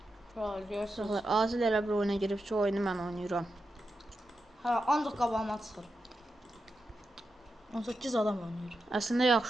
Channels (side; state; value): both; normal; correlation 0.89